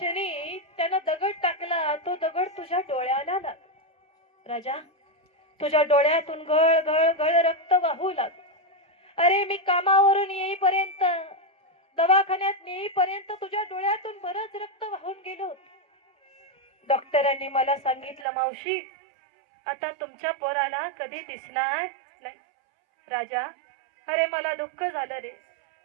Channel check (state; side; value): drops out; left; at 18.2 s